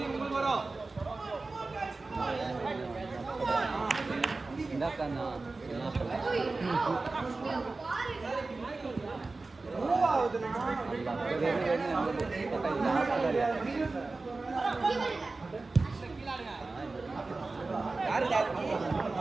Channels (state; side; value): quieter; left; 3.6 dB